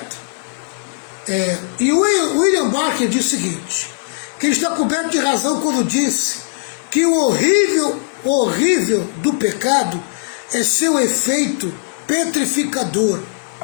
E o William Barker diz o seguinte, que ele está coberto de razão quando disse que o horrível do pecado é seu efeito petrificador.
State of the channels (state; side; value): silent; right; digital silence